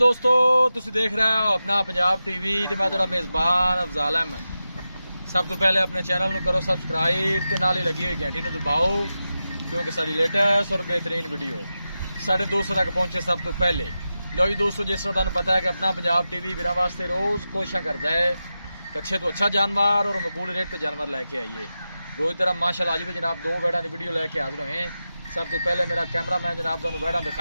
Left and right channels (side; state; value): both; inverted; correlation -0.92